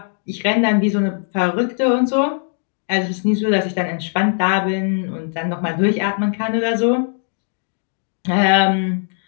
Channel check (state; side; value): silent; right; 57 dB below the other